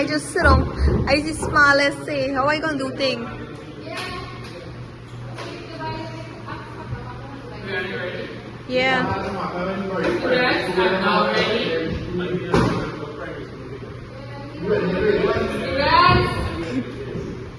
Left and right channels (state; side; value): identical; both; correlation 1.00